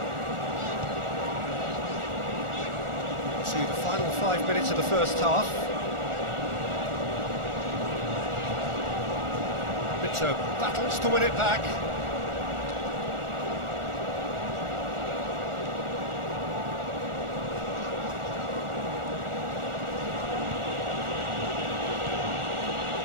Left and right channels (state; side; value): late; left; 1.4 ms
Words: To the final 5 minutes of the first half. Mito battles to win it back.